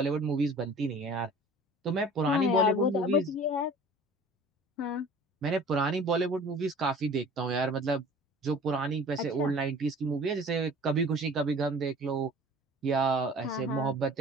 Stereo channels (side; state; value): both; normal; correlation 0.45